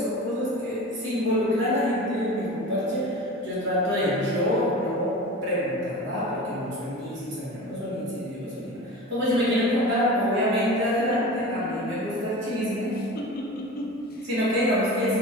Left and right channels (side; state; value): both; normal; correlation 0.34